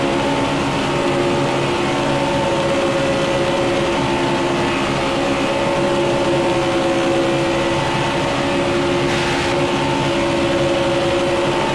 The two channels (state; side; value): identical; both; correlation 1.00